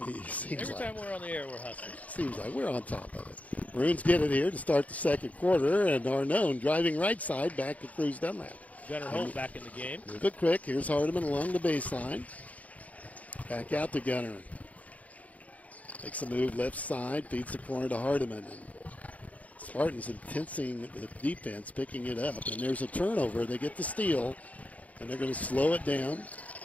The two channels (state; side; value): late; right; 0.070 ms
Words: time we're on the air, we're hustling. Seems like we're on top of it. Maroons get it here to start the second quarter, and Arnone driving right side back to Cruz Dunlap. Gunnar Holt back in the game. Move it quick. Here's Hardiman along the baseline. Back out to Gunnar. Makes a move left side, feeds the corner to Hardiman. And Spartans intensing the defense, picking it up. And there's a turnover. They get the steal, and they're going to slow it down.